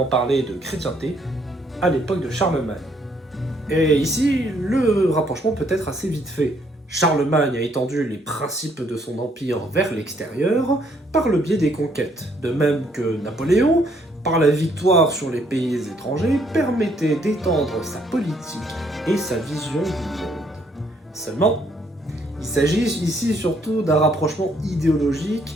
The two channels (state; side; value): normal; both; correlation 0.68